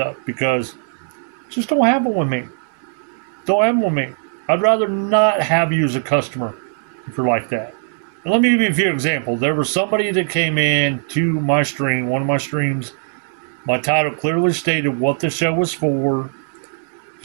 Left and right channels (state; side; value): silent; left; 66 dB below the other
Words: because it just don't happen with me. Don't happen with me. I'd rather not have you as a customer if you're like that. And let me give you a few examples. There was somebody that came in to my stream, one of my streams. My title clearly stated what the show was for. The